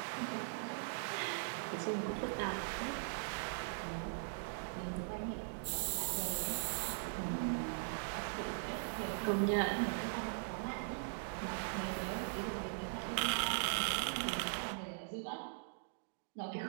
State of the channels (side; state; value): left; silent; digital silence